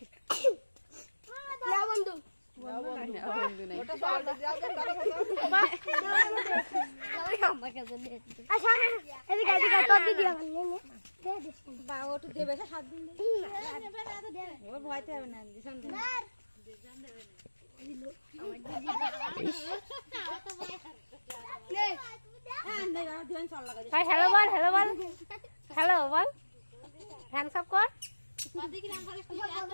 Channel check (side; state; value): both; inverted; correlation -1.00